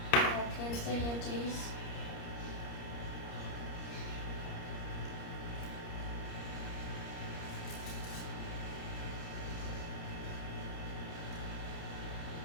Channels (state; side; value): late; right; 30 ms